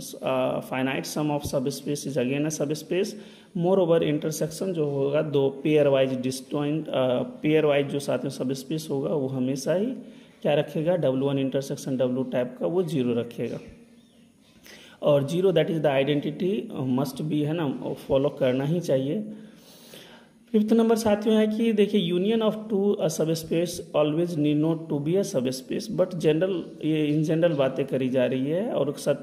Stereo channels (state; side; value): identical; both; correlation 1.00